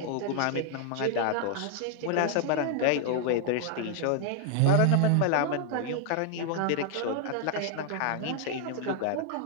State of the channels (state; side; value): different; both; correlation 0.00